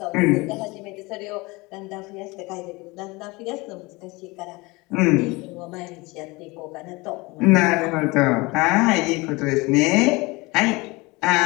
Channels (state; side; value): quieter; right; 24.1 dB